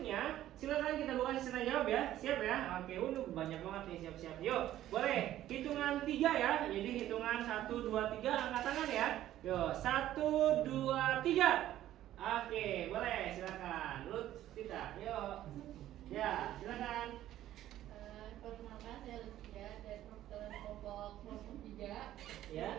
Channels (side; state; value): left; quieter; 13.1 dB